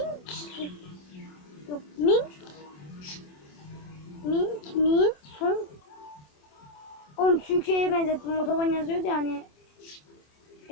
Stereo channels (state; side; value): late; right; 27 ms